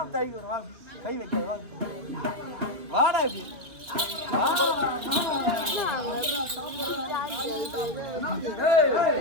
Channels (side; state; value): left; late; 2.7 ms